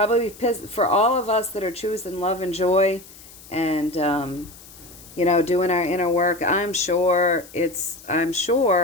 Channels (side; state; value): left; noise; hiss, 20 dB below the sound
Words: all of us that are choosing love and joy and, doing our inner work, I'm sure